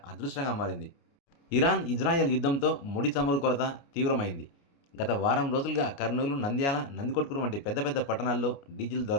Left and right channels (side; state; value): right; late; 29 ms